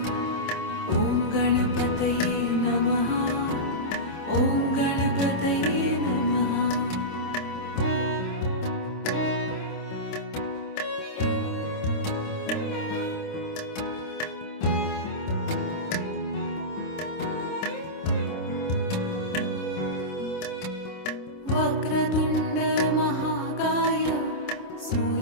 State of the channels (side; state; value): right; late; 26 ms